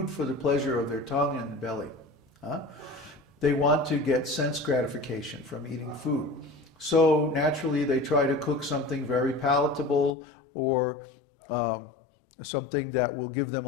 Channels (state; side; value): drops out; right; at 10.2 s